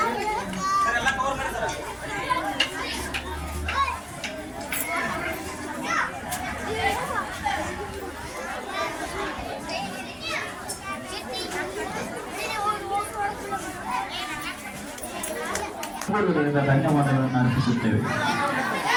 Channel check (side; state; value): both; identical; correlation 1.00